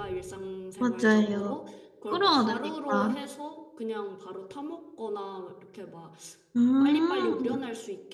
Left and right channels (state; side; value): identical; both; correlation 1.00